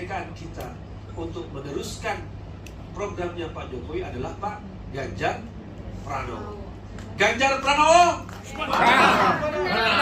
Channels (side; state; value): both; identical; correlation 1.00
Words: kita, untuk meneruskan programnya Pak Jokowi adalah Pak Ganjar Pranowo. Ganjar Pranowo.